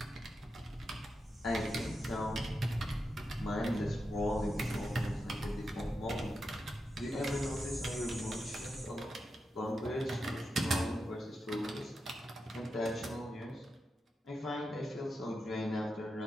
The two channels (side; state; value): both; normal; correlation 0.88